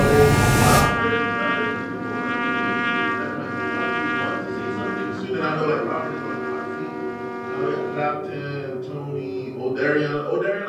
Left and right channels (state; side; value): identical; both; correlation 1.00